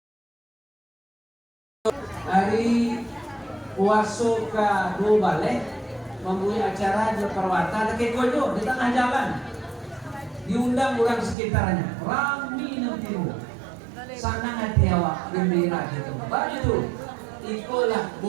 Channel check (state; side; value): drops out; left; at 11.4 s